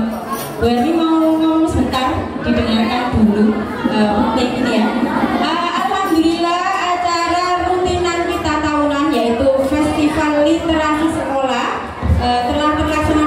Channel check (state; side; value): identical; both; correlation 1.00